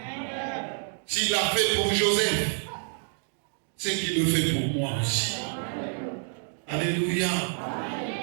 S'il l'a fait pour Joseph, c'est qu'il le fait pour moi aussi. Alléluia.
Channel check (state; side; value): silent; left; 59 dB below the other